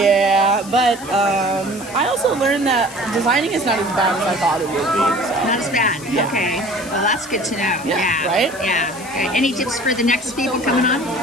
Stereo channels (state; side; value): noise; left; hiss, 16 dB below the sound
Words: but I also learned that designing is not as bad as I thought it would be. So. Not as bad. Yeah. Okay. Well, that's good to know. Yeah, right? Yeah. Okay. Any tips for the next people coming on?